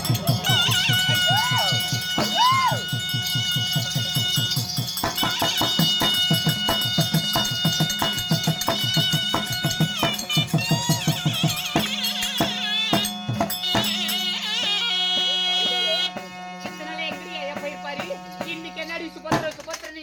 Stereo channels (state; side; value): identical; both; correlation 1.00